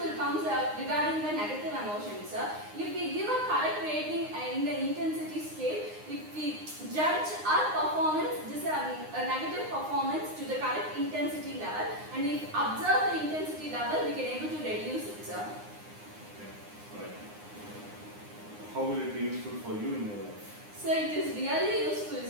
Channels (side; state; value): left; late; 9.7 ms